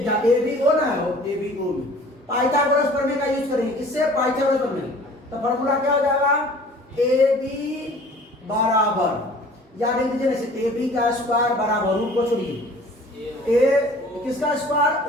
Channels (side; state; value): both; normal; correlation 0.49